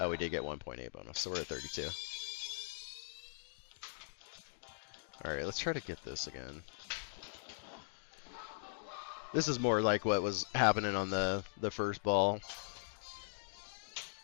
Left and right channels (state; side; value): silent; right; digital silence